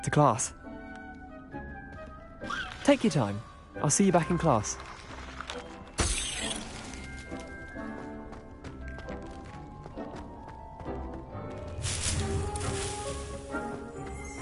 to class. Take your time. I'll see you back in class.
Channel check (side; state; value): both; identical; correlation 1.00